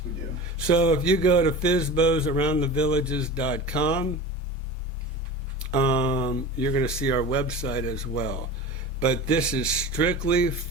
we do. So if you go to fizbosaroundthevillages.com, you're going to see our website as well. But this is strictly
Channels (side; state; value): both; normal; correlation 0.32